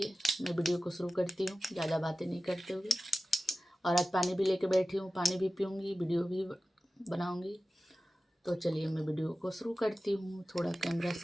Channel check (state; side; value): normal; both; correlation 0.95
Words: मैं वीडियो को शुरू करती हूँ, ज़्यादा बातें नहीं करते हुए। और आज पानी भी लेके बैठी हूँ, पानी भी पीऊँगी, वीडियो भी बनाऊँगी। तो चलिए मैं वीडियो को शुरू करती हूँ। थोड़ा कैमरा